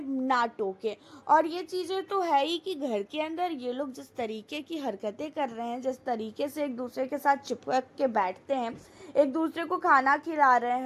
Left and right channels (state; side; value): identical; both; correlation 1.00